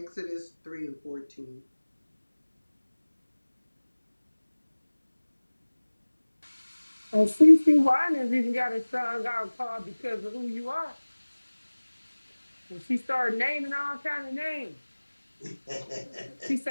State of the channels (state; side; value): inverted; both; correlation -1.00